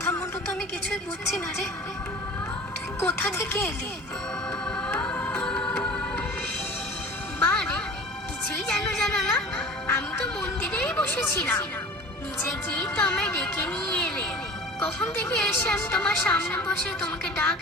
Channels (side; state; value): both; normal; correlation 0.40